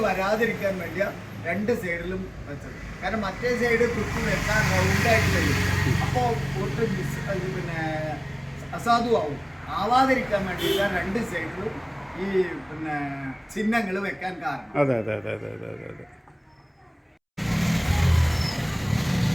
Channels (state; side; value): identical; both; correlation 1.00